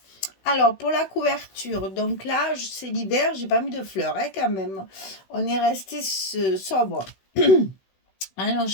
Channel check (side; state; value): right; late; 16 ms